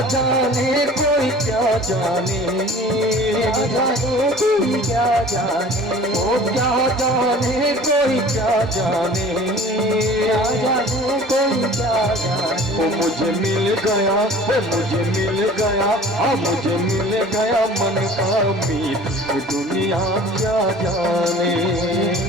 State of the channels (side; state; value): both; normal; correlation 0.45